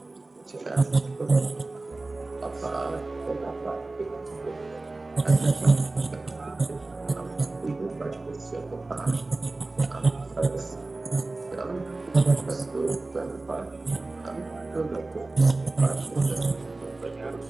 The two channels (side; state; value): left; quieter; 3.2 dB